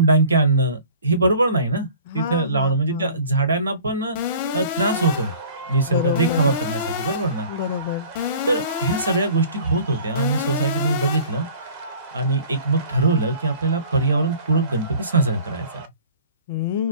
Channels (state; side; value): inverted; both; correlation -0.47